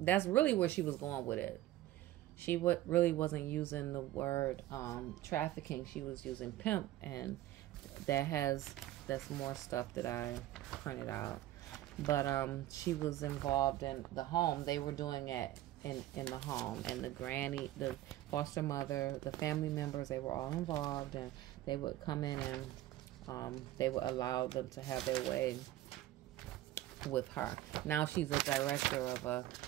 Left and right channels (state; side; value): quieter; left; 14.6 dB